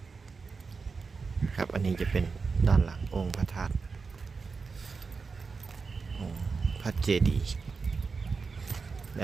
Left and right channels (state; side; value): quieter; left; 4.8 dB